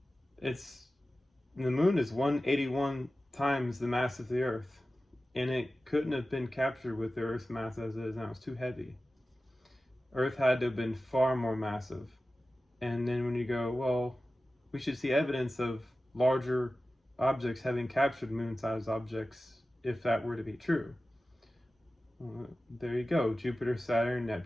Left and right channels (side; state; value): both; normal; correlation 0.95